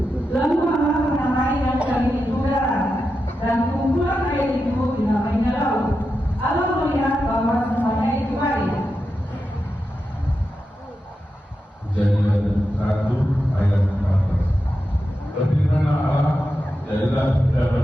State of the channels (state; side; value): normal; both; correlation 0.89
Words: Lalu Allah menamai yang dari udara dan kumpulan air itu dinamainya laut. Allah melihat bahwa semuanya itu baik. Kejadian 1 ayat 14. Berfirmanlah Allah, jadilah